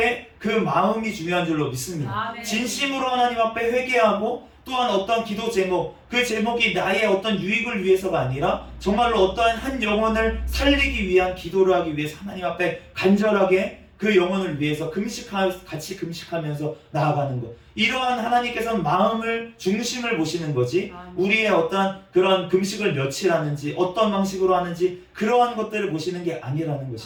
그 마음이 중요한 줄로 믿습니다. 진심으로 하나님 앞에 회개하고, 또한 어떤 기도 제목, 그 제목이 나의 어떤 유익을 위해서가 아니라 정말로 어떠한 한 영혼을 살리기 위한 기도를 하기 위해서 하나님 앞에 간절하게 그 영혼을 위해서 같이 금식하면서 나아가는 것. 이러한 하나님께서는 마음을, 중심을 보시는 거지, 우리의 어떤 그런 금식을 며칠 하는지, 어떤 방식으로 하는지, 그러한 것들을 보시는 게 아니라는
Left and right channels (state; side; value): identical; both; correlation 1.00